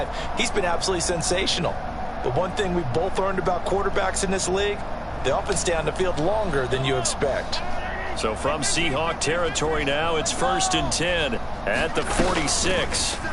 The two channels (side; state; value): both; identical; correlation 1.00